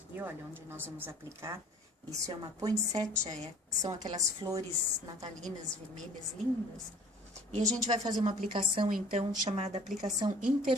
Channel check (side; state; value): both; normal; correlation 0.50